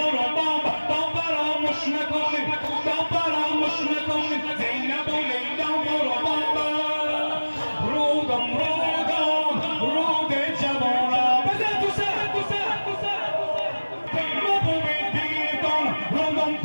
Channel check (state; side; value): inverted; both; correlation -1.00